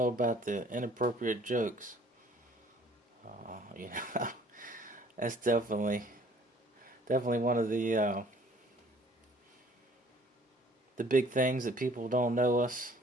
about the inappropriate jokes. That's definitely one of the big things that people don't know us.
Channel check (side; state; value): both; normal; correlation 0.55